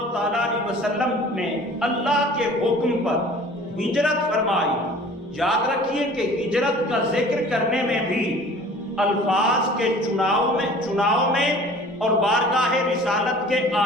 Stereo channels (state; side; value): normal; both; correlation 0.47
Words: تعالیٰ علیہ وسلم نے اللہ کے حکم پر ہجرت فرمائی، یاد رکھیے کہ ہجرت کا ذکر کرنے میں بھی الفاظ کے چناؤ میں اور بارگاہ رسالت کے